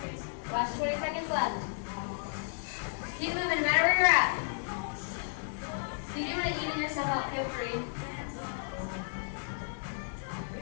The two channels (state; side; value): silent; right; digital silence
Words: Last 20 seconds left. Keep moving no matter where you're at. If you do want to even yourself out, feel free.